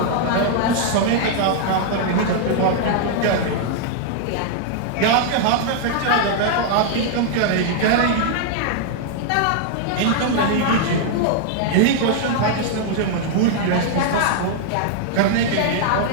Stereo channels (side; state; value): both; different; correlation -0.01